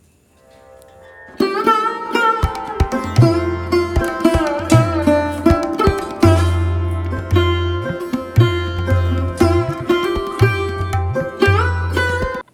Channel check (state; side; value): identical; both; correlation 1.00